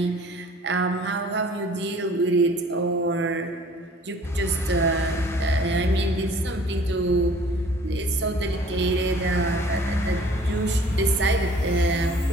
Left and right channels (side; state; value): both; normal; correlation 0.52